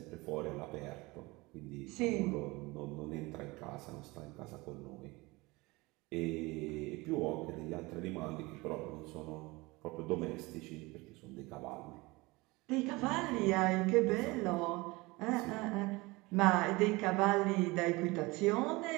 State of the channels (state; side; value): quieter; left; 23.0 dB